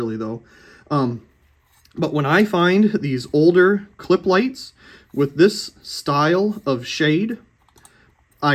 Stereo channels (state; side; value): identical; both; correlation 1.00